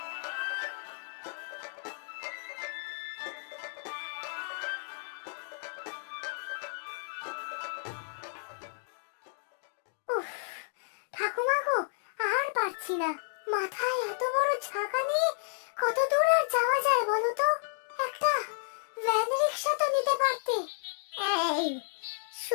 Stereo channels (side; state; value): right; silent; digital silence